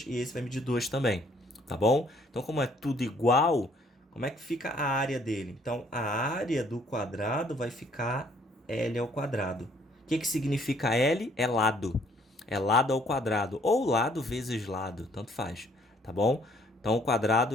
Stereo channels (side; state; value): both; normal; correlation 0.63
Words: e esse vai medir 2 também, tá bom? Então, como é tudo igual, como é que fica a área dele? Então, a área do quadrado vai ficar L ao quadrado. O que significa L? É lado. É lado ao quadrado, ou lado vezes lado, tanto faz, tá bom? Então, o quadrado